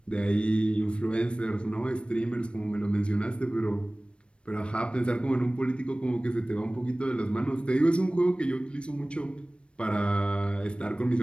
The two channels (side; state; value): right; late; 0.058 ms